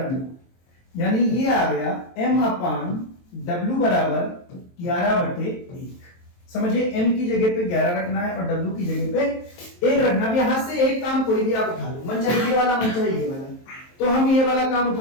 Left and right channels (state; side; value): late; right; 23 ms